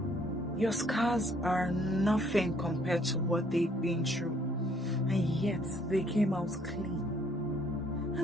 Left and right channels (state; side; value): normal; both; correlation 0.64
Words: Your scars are nothing compared to what they've been through, and yet they came out clean.